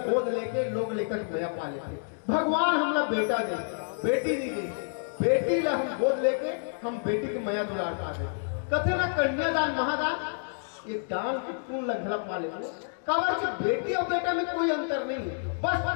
गोद लेके लोग लेकर भैया पा लेते भगवान हमला बेटा दे बेटी नहीं दे बेटी ला हम गोद लेके हम बेटी के मया दुलार पा दे कथे ना कन्यादान महादान ये दान की पूर्ण लंघला पा ले कवर की बेटी और बेटा में कोई अंतर नहीं है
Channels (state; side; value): silent; right; digital silence